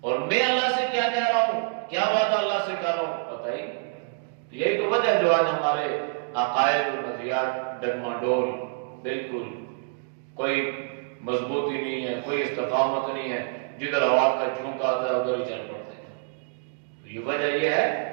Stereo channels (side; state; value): left; silent; digital silence